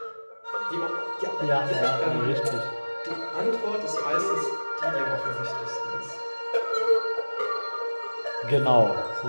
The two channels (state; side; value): inverted; both; correlation -1.00